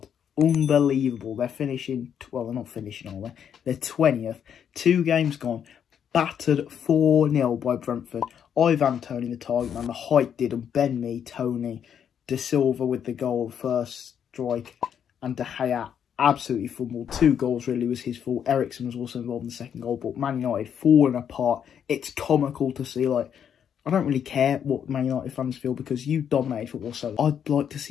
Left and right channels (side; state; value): right; quieter; 8.4 dB